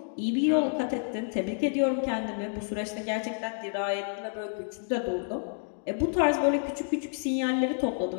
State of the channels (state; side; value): silent; right; digital silence